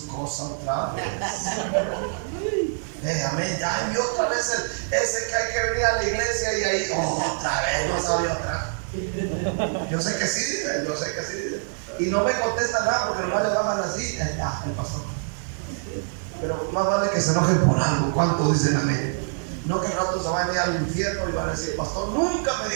cosa otra vez. Amén, ya envió otra vez ese que hay que venir a la iglesia y ahí otra vez, no sabe otra. Yo sé que sí dice, y no me contesta nada porque nomás le bajan así, el pastor. Pero más vale que se enojen por algo. ¿Cuántos dicen amén? No que el rato se van a ir al infierno y van a decir, pastor nunca me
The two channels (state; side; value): silent; left; 59 dB below the other